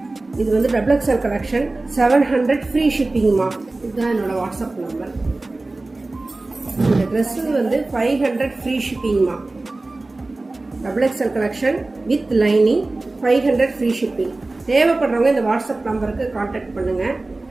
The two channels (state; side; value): quieter; left; 3.1 dB